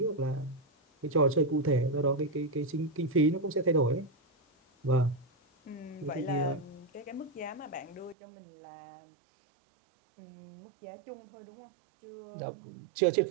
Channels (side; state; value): left; drops out; at 8.2 s